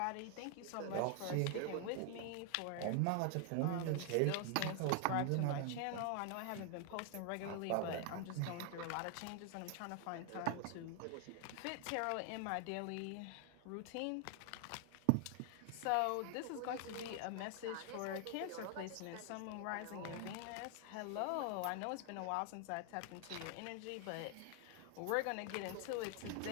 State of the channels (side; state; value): both; different; correlation 0.00